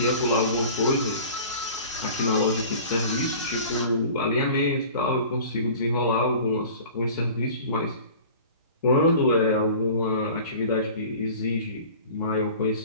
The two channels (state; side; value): inverted; both; correlation -0.43